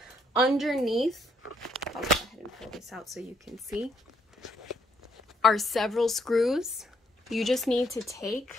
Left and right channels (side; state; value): both; normal; correlation 0.72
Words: Underneath, I'll go ahead and pull this out so you can see, are several screws. You just need to